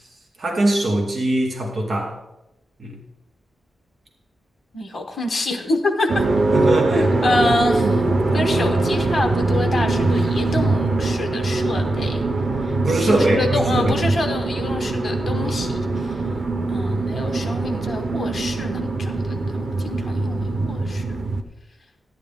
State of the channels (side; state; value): both; normal; correlation 0.88